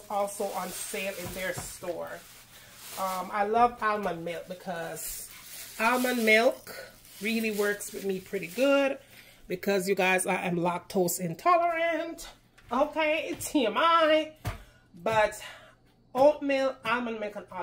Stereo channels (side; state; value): both; identical; correlation 1.00